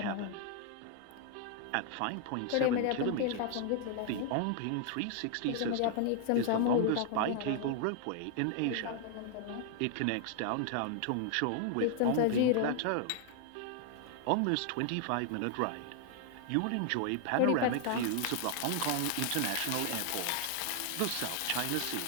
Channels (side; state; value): both; different; correlation 0.00